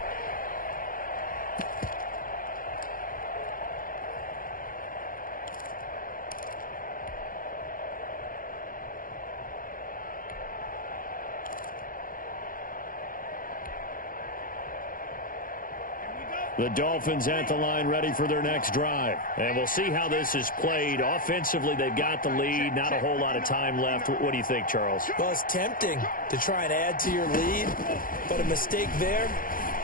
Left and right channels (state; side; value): late; right; 0.40 ms